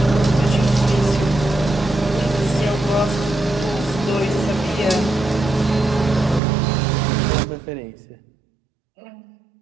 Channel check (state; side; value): drops out; left; at 6.4 s